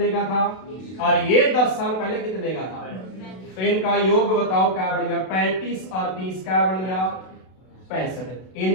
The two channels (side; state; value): right; late; 32 ms